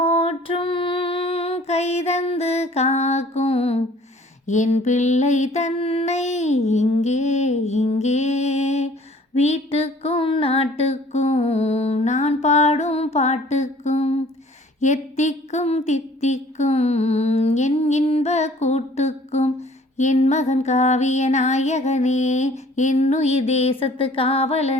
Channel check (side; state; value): both; normal; correlation 0.53